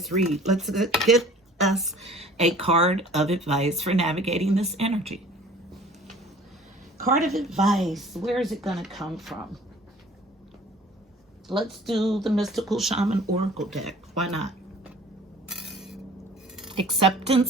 read. Let's get us a card of advice for navigating this energy. Card of advice. Where is it going to come from? Let's do the Mystical Shaman Oracle deck. Why not?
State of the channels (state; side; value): normal; both; correlation 0.49